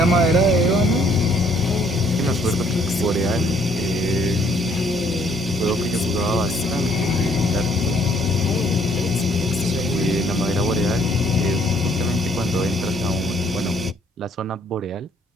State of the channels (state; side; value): normal; both; correlation 0.63